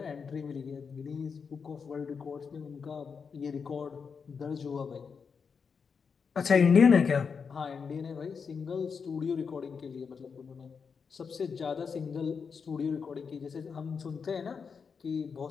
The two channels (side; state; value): right; quieter; 5.8 dB